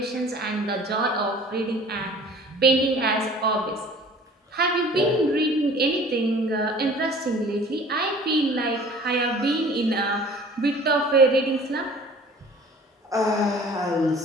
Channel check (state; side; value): normal; both; correlation 0.48